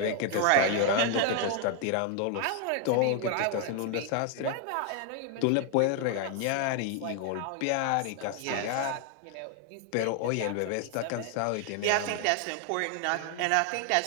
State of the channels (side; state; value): both; different; correlation 0.00